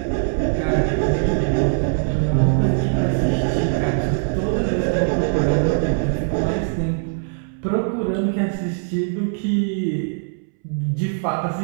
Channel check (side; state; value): left; silent; 65 dB below the other